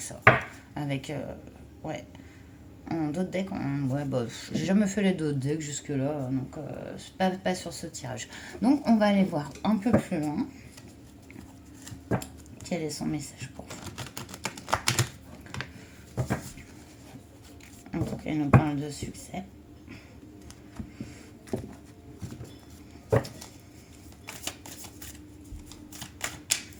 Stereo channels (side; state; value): both; identical; correlation 1.00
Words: ça, avec ouais. En d'autres decks, ouais, bah, j'ai jamais fait les d'autres decks jusque-là, donc pas sur ce tirage. Donc on va aller voir un peu plus loin. Quel est son message pour vous? Donc il nous parle de succès.